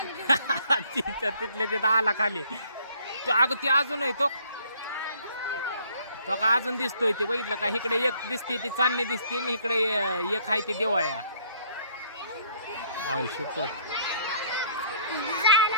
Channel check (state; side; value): inverted; both; correlation -0.62